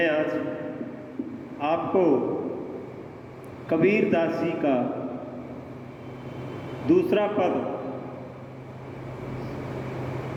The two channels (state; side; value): identical; both; correlation 1.00